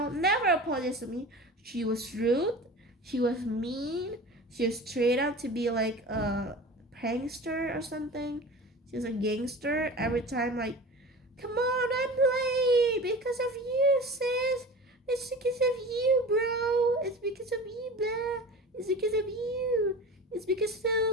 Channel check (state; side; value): normal; both; correlation 0.35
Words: never apologized to me. She was rude. She was mean. She was straight up to be like a prankster or something. She was a gangster. Every time, like, come on, I'm late because of you, sis. It's because of you, bro. It's because of you, blah. It's because of you. It's because